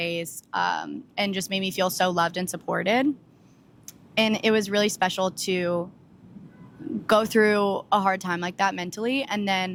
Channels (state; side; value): identical; both; correlation 1.00